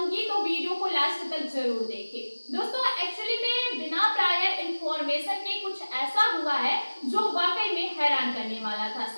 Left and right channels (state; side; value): inverted; both; correlation -1.00